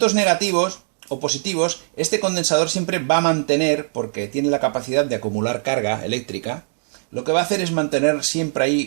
negativos o positivos, este condensador siempre va a mantener, porque tiene la capacidad de acumular carga eléctrica, lo que va a hacer es mantener siempre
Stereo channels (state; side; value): silent; left; digital silence